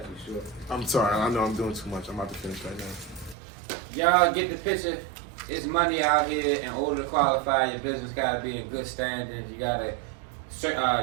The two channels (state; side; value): drops out; left; at 3.4 s